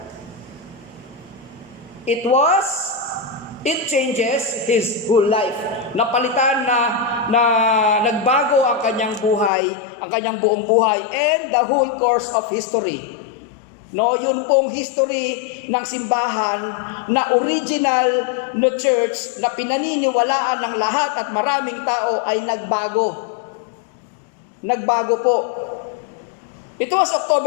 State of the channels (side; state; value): right; drops out; at 9.5 s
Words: It changes his whole life. Napalitan na nagbago ang kanyang buhay, ang kanyang buong buhay and the whole course of history. No, yun pong history ng simbahan na original na church na pinaniniwalaan ng lahat at maraming tao ay nagbago. Nagbago po. Ito was